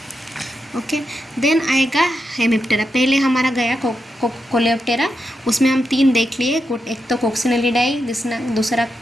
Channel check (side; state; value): both; normal; correlation 0.86